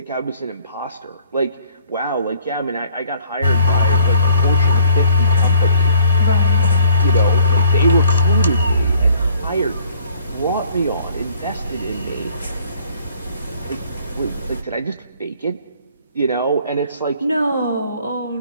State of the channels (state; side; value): inverted; both; correlation -0.58